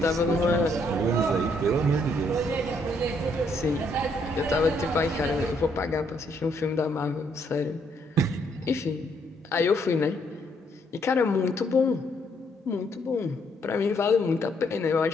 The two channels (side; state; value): both; normal; correlation 0.71